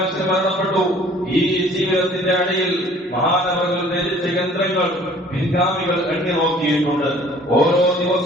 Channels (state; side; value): normal; both; correlation 0.53